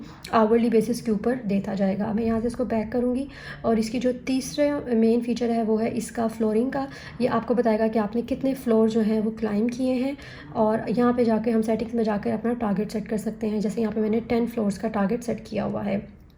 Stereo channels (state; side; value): identical; both; correlation 1.00